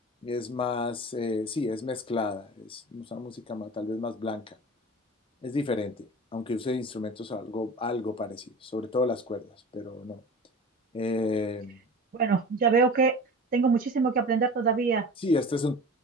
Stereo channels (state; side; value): normal; both; correlation 0.36